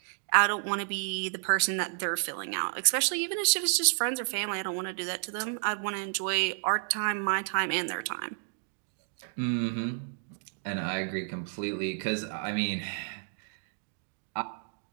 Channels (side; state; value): left; silent; digital silence